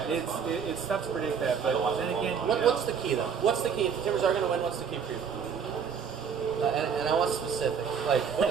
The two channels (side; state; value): left; quieter; 6.8 dB